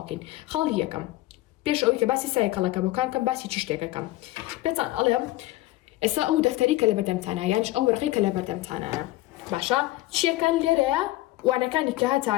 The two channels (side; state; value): right; quieter; 17.3 dB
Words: خاڵی یەکەم پێش ئەوەی کە باسی سایکەڵەکەبەکان کەم باسی چی شتێکەکەم پێتان ئەڵێم ئێستا ئەو دەفتەری کە لە بەردەمتانە یانش ئەو وەرقەی کە لە بەردەمتانەیە باشە چیەکان لێرەیە وانەکانی کە